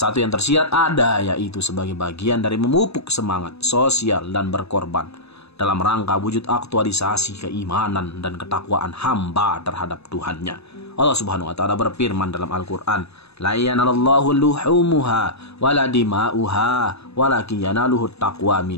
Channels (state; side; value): late; right; 0.79 ms